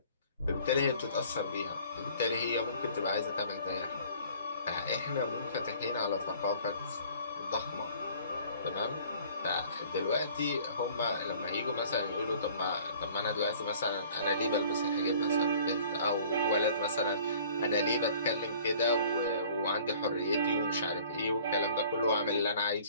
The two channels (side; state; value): both; inverted; correlation -0.51